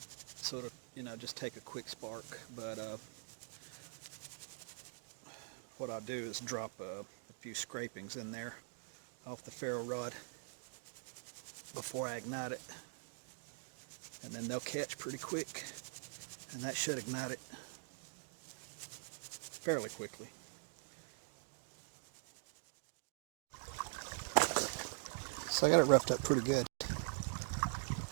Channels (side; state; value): left; silent; digital silence